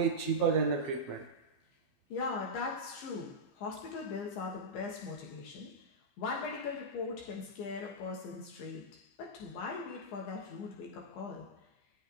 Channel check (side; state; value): right; late; 15 ms